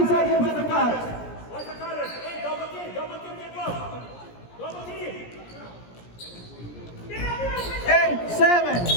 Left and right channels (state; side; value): late; right; 17 ms